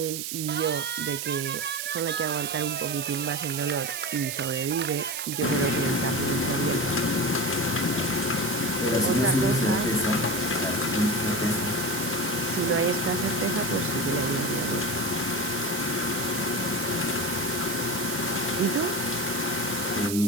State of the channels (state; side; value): noise; right; hiss, 4 dB below the sound